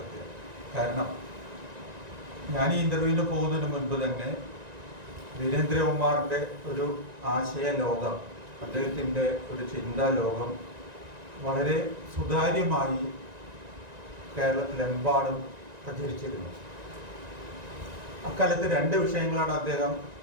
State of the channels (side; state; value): left; late; 1.9 ms